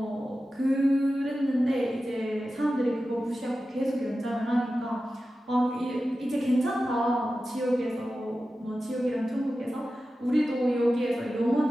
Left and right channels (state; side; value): normal; both; correlation 0.93